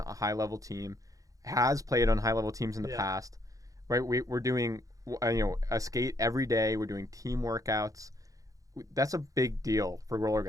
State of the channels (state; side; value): late; left; 0.17 ms